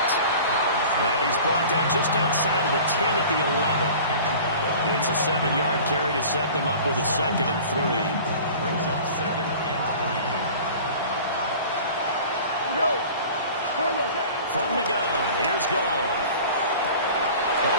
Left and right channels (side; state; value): both; inverted; correlation -0.42